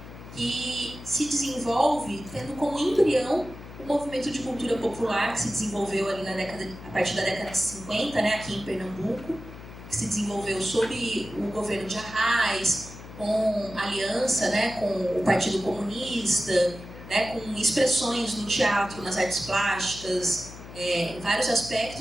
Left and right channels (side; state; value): left; noise; hum, 15 dB below the sound